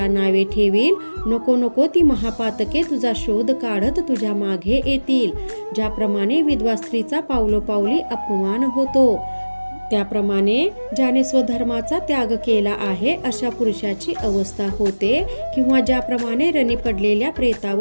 नावे ठेवील. नको ती महापातके तुझा शोध काढत तुझ्या मागे येतील. ज्याप्रमाणे विधवा स्त्रीचा पावलोपावली अपमान होतो, त्याप्रमाणे ज्याने स्वधर्माचा त्याग केला आहे अशा पुरुषाची अवस्था होते. किंवा ज्याप्रमाणे रणी पडलेल्या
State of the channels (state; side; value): inverted; both; correlation -1.00